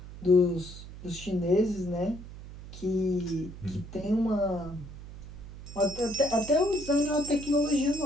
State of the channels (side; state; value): right; noise; hum, 14 dB below the sound